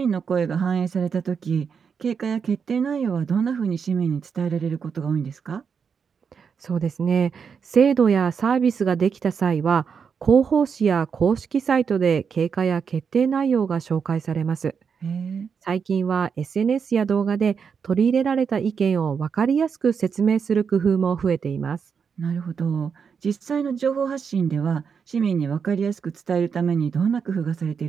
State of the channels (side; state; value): left; quieter; 6.4 dB